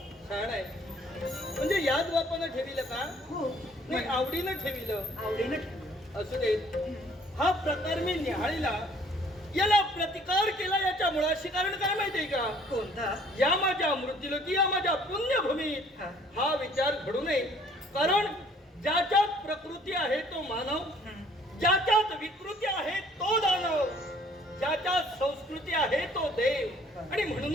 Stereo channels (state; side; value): normal; both; correlation 0.59